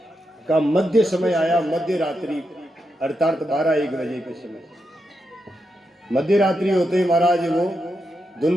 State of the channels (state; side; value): normal; both; correlation 0.85